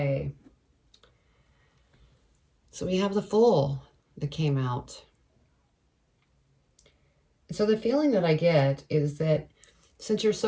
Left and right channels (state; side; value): identical; both; correlation 1.00